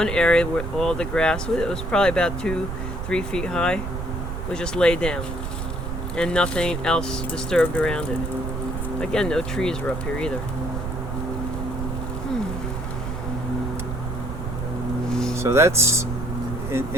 area where all the grass, it was probably about 2-3 feet high, was just laid down, and nothing else disturbed around it. Again, no trees were up here either. So that's,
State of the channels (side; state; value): right; noise; rumble, 5 dB below the sound